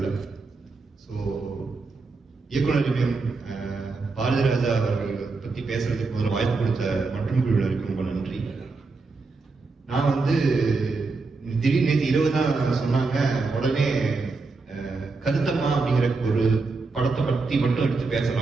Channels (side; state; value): left; quieter; 4.0 dB